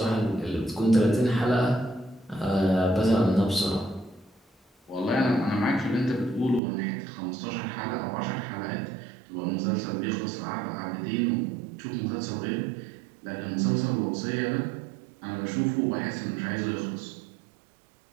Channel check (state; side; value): drops out; left; at 6.6 s